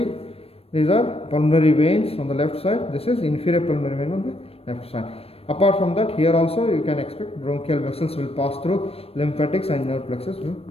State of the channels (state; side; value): late; right; 0.28 ms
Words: These are pulmonary veins on the left side. This is inferior pulmonary vein on the left side. Apart from that, here also you can expect bronchial vessels will pass through, lymphatics and nerve plexus will